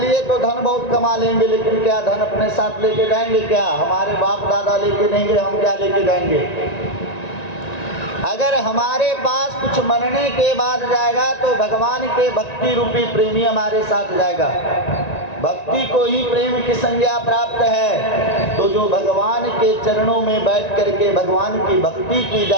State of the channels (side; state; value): right; late; 1.9 ms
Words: तो धन बहुत कमा लेंगे, लेकिन क्या धन अपने साथ लेके जाएंगे? क्या हमारे बाप दादा लेके देंगे? हम क्या लेके जाएंगे? अगर हमारे पास कुछ मरने के बाद जाएगा तो भगवान के भक्ति रूपी प्रेमी हमारे साथ जाएगा। भक्ति को ही प्रेम की संज्ञा प्राप्त है। तो जो भगवान के चरणों में बैठ करके भगवान की भक्ति की